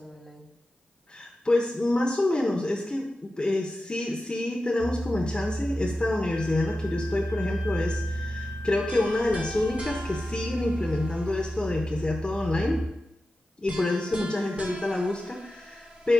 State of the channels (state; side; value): normal; both; correlation 0.93